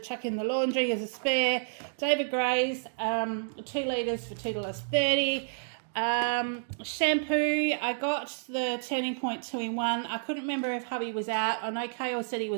in the laundry as a spare. David Gray's 2 litres for $2.30. Shampoo, I got the Turning Point 2-in-1. I couldn't remember if hubby was out. I know Kale said he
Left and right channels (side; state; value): left; silent; digital silence